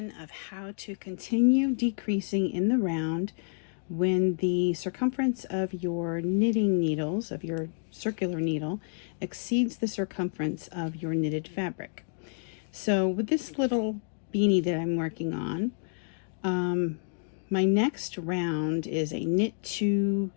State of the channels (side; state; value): right; silent; digital silence